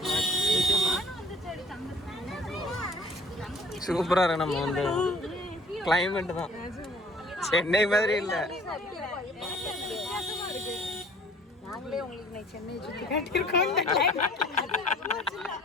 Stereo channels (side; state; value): both; normal; correlation 0.52